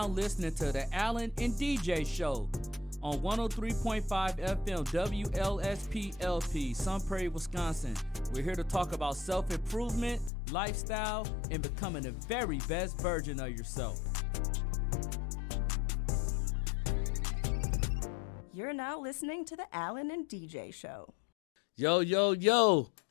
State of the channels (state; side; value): drops out; right; at 10.3 s